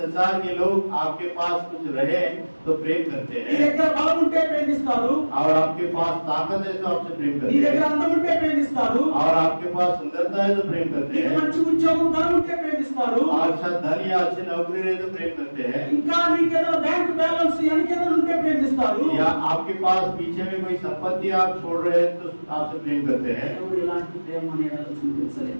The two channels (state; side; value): inverted; both; correlation -1.00